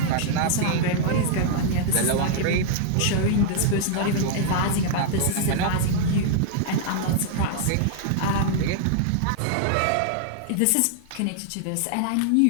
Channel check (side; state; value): both; different; correlation -0.01